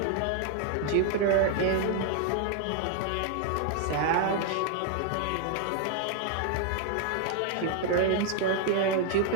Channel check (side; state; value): both; different; correlation 0.00